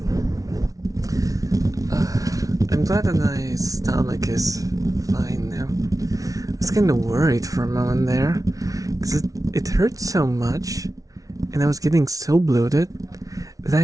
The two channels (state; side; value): late; left; 0.17 ms